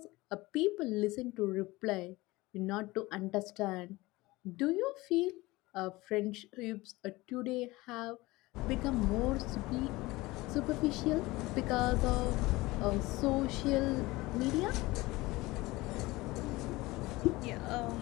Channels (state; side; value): quieter; right; 20.6 dB